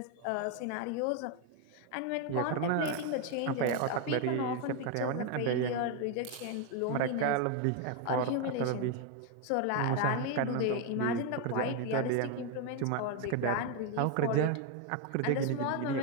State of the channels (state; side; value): different; both; correlation 0.01